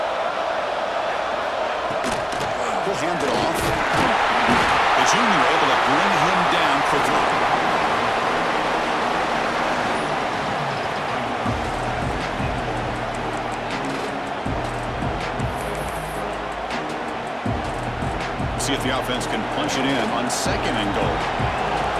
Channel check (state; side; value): identical; both; correlation 1.00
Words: He'll hand it off. The junior able to bring him down quickly. See if the offense can punch it in on second and goal.